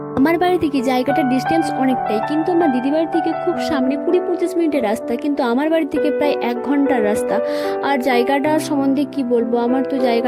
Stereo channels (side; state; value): both; identical; correlation 1.00